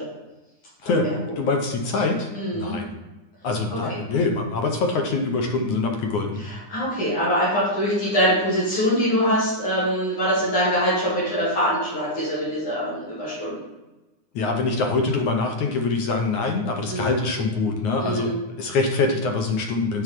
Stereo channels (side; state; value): right; late; 9.8 ms